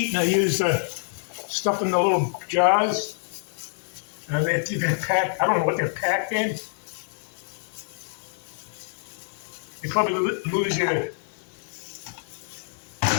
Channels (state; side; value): silent; right; digital silence